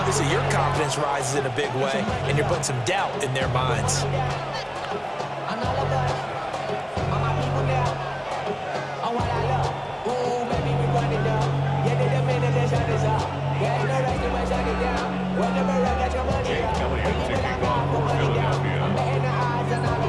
your confidence rises in a big way, and you're putting some doubt in their minds.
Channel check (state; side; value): identical; both; correlation 1.00